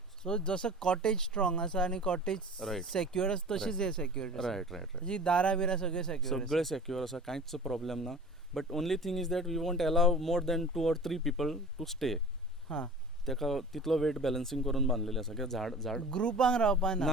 सो जसं कॉटेज स्ट्रॉंग आसा आनी कॉटेज Right. सेक्युअर आसा तशीच हे सेक्युअर रायट रायट रायट जी दारां बिरां सगळे सेक्युअर सगळे सेक्युअर आसा कांयच प्रॉब्लेम ना but only thing is that we want allow more than 2 or 3 people to stay हां तेका तितलो वेट बॅलन्सिंग करून बांदलेले आसा कित्याक झाड ग्रुपांक रावपा ना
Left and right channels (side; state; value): both; normal; correlation 0.40